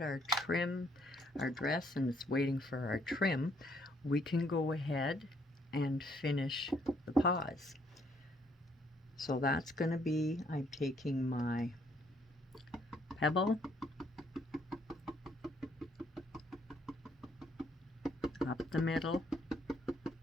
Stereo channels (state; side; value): normal; both; correlation 0.68